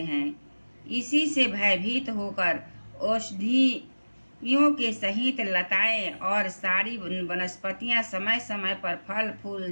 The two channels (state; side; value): inverted; both; correlation -1.00